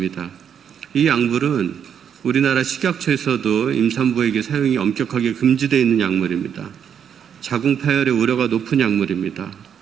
이 약물은 우리나라 식약처에서도 임산부에게 사용이 엄격하게 금지되어 있는 약물입니다. 자궁 파열의 우려가 높은 약물입니다.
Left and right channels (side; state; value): left; quieter; 8.2 dB